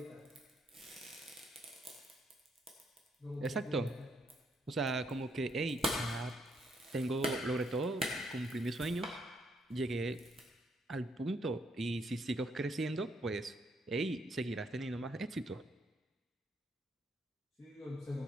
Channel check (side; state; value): both; normal; correlation 0.73